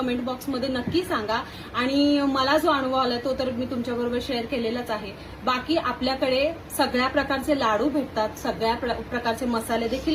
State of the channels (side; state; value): both; identical; correlation 1.00